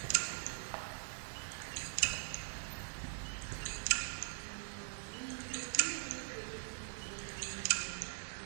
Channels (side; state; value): left; silent; digital silence